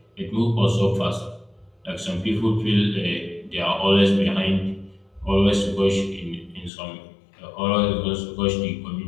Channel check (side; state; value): right; drops out; at 6.7 s